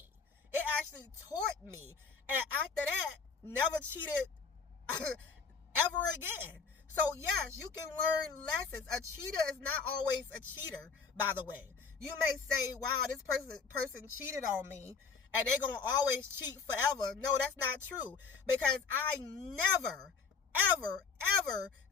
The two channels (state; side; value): quieter; right; 5.4 dB